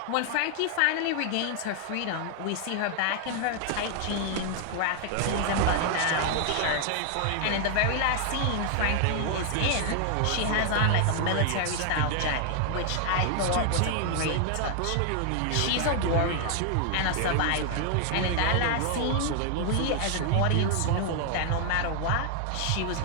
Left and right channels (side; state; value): both; different; correlation 0.00